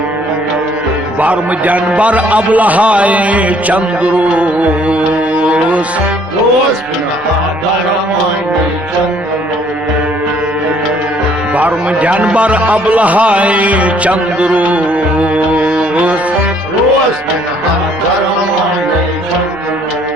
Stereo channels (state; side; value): normal; both; correlation 0.62